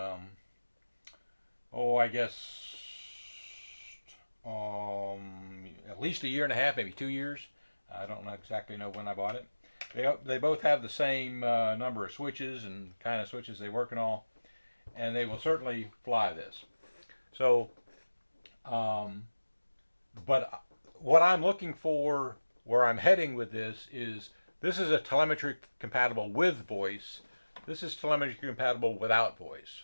guess, at least a year and a half, maybe 2 years. I don't exactly know when I bought it. They both have the same number of switches and kind of switches they work and all, and they will certainly fly this. So, but what I'm looking for, where I'm heading with this is a telemetry compatible with voice. This is telemetry compatible without voice.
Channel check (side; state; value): both; inverted; correlation -1.00